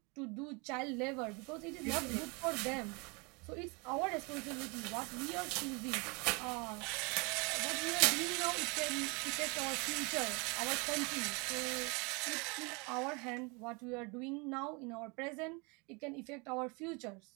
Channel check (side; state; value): left; quieter; 29.8 dB